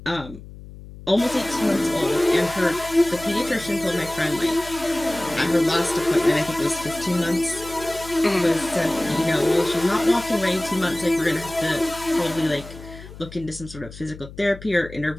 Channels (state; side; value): noise; left; hum, 16 dB below the sound